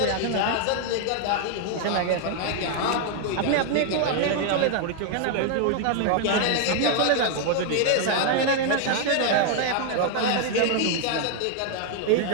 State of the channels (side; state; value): both; different; correlation 0.00